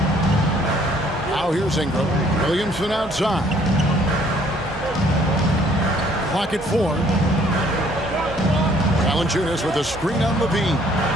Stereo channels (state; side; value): normal; both; correlation 0.61